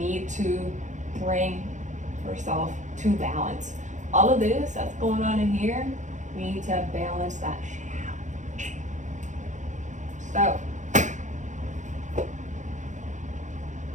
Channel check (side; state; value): left; late; 0.35 ms